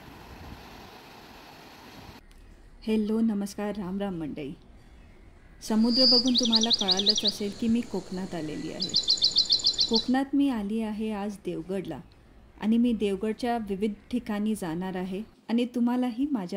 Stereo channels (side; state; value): both; identical; correlation 1.00